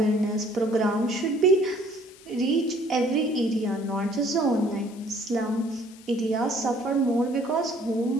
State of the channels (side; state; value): left; noise; hiss, 23 dB below the sound